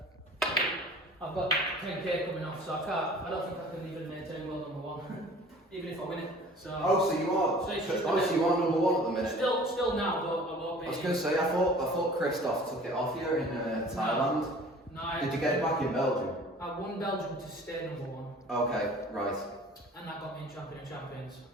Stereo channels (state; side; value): normal; both; correlation 0.47